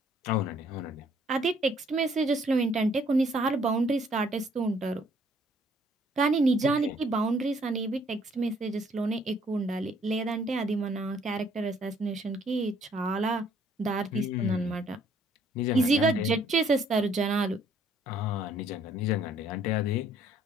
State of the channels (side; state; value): both; normal; correlation 0.63